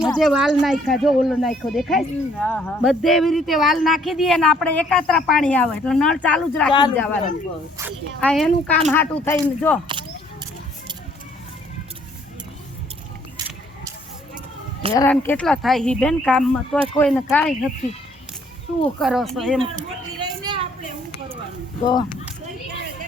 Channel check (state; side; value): normal; both; correlation 0.63